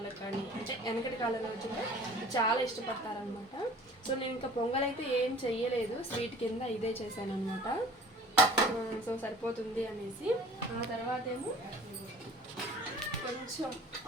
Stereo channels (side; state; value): both; normal; correlation 0.47